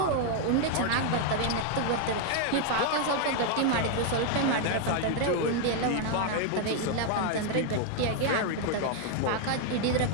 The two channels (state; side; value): different; both; correlation 0.00